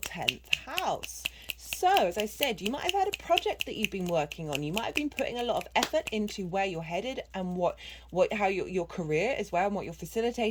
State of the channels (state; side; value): identical; both; correlation 1.00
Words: house. So, as I said, you might have had a project that you've been working on. You might have been putting a lot of effort into where you're headed and how your career as well, and what you're